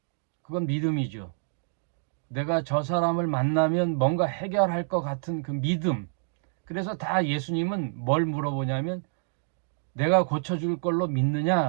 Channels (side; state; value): left; silent; digital silence